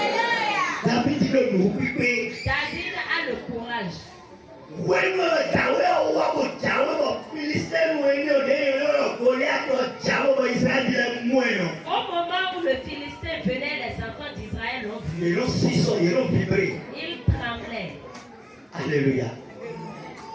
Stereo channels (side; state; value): both; identical; correlation 1.00